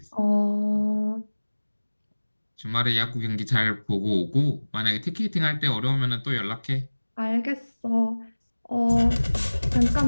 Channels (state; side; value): inverted; both; correlation -1.00